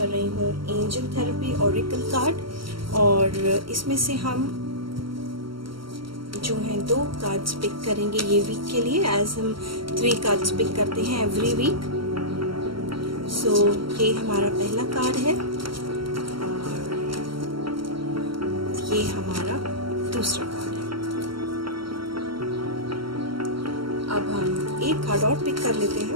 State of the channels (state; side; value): late; left; 0.74 ms